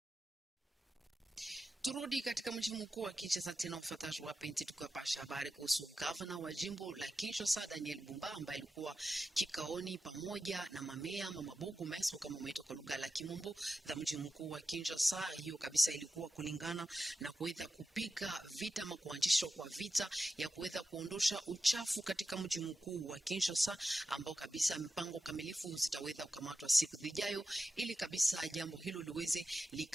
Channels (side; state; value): both; normal; correlation 0.91